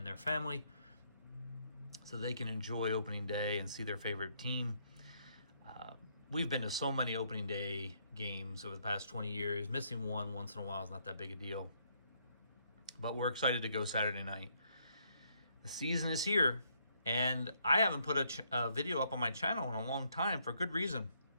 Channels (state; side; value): inverted; both; correlation -0.72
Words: their family so they can enjoy opening day and see their favorite team. We've been to so many opening day games over the past 20 years. Missing one once in a while is not that big a deal, but we're excited to go Saturday night. The season is here, and I haven't put a video up on my channel in a long time for good reason.